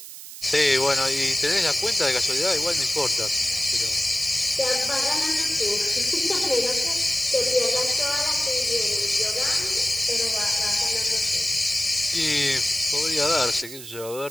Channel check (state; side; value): noise; right; hiss, 13 dB below the sound